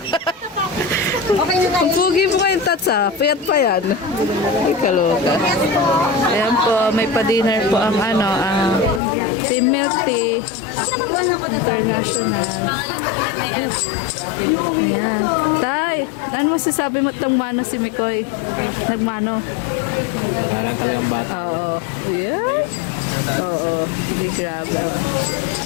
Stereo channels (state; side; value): drops out; right; at 9.0 s